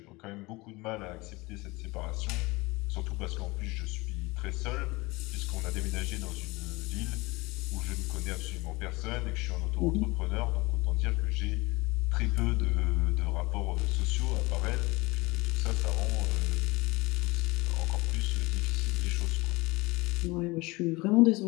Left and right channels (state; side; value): quieter; right; 23.2 dB